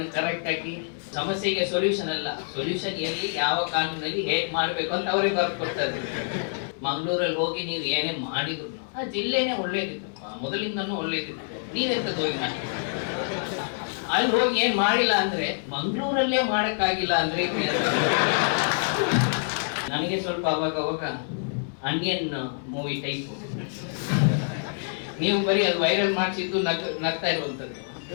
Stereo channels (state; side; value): silent; right; 61 dB below the other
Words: ಕರೆಕ್ಟ್ ಆಗಿ, ಸಮಸ್ಯೆಗೆ ಸೊಲ್ಯೂಷನ್ ಅಲ್ಲ, ಸೊಲ್ಯೂಷನ್ ಎಲ್ಲಿ ಯಾವ ಕಾನೂನಲ್ಲಿ ಹೇಗ್ ಮಾಡ್ಬೇಕು ಅಂತ ಅವರೇ ಬರ್ಕೊಡ್ತಾರೆ. ಮಂಗಳೂರಲ್ಲಿ ಹೋಗಿ ನೀವು ಏನೇ ಮಾಡಿದ್ರು ಆ ಜಿಲ್ಲೆನೇ ಒಳ್ಳೇದಿತ್ತು, ಮೊದಲಿಂದನೂ ಒಳ್ಳೇದಿತ್ತು. ನೀವೆಂತದ್ದು ಹೋಗಿ ಮಾಡಿ ಅಲ್ಲಿ ಹೋಗಿ ಏನ್ ಮಾಡಿಲ್ಲ ಅಂದ್ರೆ ಮಂಗಳೂರಲ್ಲೇ ಮಾಡಕ್ಕಾಗಿಲ್ಲ ಅಂದ್ರೆ ನನಗೆ ಸ್ವಲ್ಪ ಅವಾಗ ಅನಿಯನ್ ಮೂವಿ ಟೈಪ್. ನೀವು ಬರೀ ಅದು ವೈರಲ್ ಮಾಡಿಸಿದ್ದು ನಗ್ತಾ ಇರುವಂತದ್ದು.